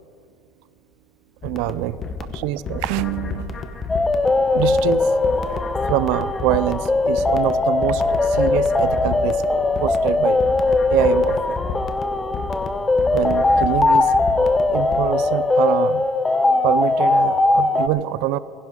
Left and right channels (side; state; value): both; normal; correlation 0.71